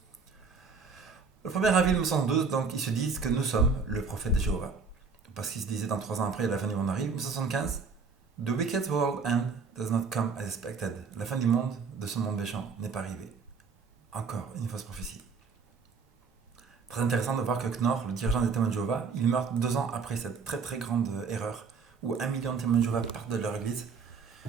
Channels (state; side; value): quieter; left; 5.1 dB